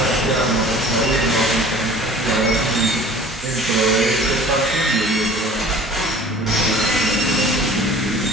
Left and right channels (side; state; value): both; normal; correlation 0.46